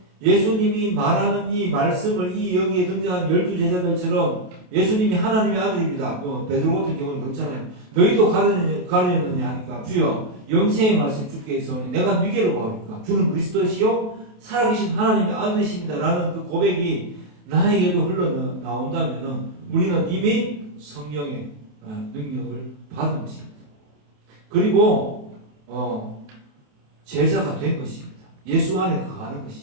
예수님이 말하는 이 말씀을 이 여기에 등장한 12제자들처럼 예수님이 하나님의 아들입니다. 베드로 같은 경우는 그렇잖아요. 너희도 가르쳤느냐 하니까 주여 영생의 말씀 주께 있어오니 내가 누구로 보합니까? 주는 그리스도시요 살아계신 하나님의 아들이십니다. 라는 그 고백이 나에게도 흘러나온다면 우리는 이미 성령의 능력을 받은 것입니다. 그리고 제자가 된 것입니다. 예수 안에 거하는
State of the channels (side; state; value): left; late; 28 ms